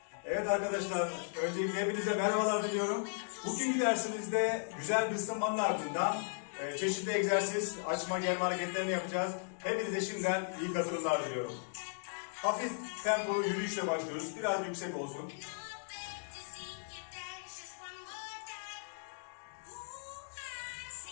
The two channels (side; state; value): right; silent; digital silence